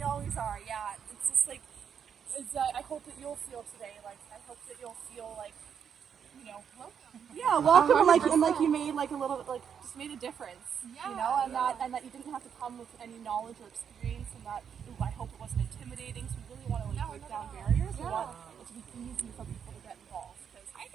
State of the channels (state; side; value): quieter; left; 7.7 dB